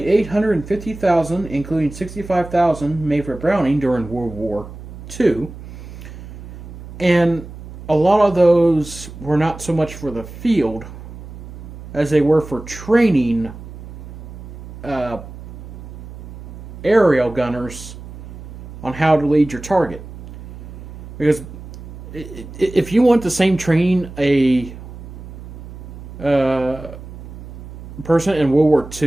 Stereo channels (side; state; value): right; noise; hum, 13 dB below the sound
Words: 850,000, including 65,000, made for Browning during World War II. And a lot of those were not so much for the field as they were for training aerial gunners on how to lead your target. Because if you want the same training a person in World War